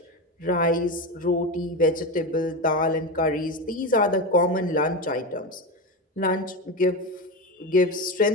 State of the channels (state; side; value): normal; both; correlation 0.18